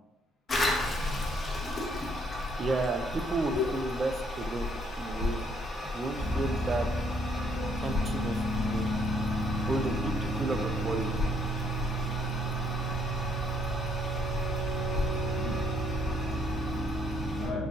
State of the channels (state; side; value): normal; both; correlation 0.69